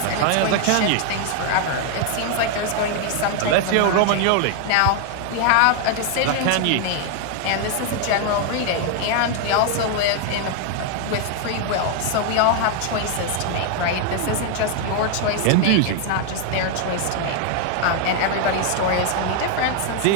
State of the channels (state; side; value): different; both; correlation 0.00